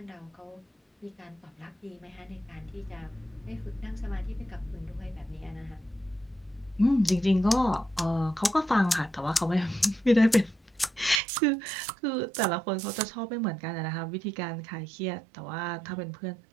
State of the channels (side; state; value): left; drops out; at 11.2 s